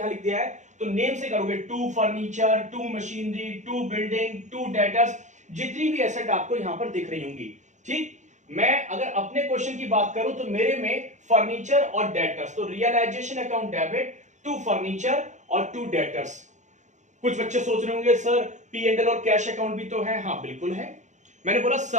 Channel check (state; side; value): late; left; 0.35 ms